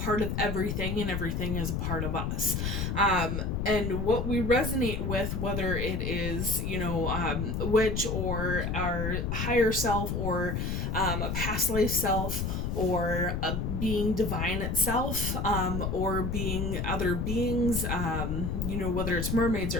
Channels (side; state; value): left; noise; rumble, 1 dB below the sound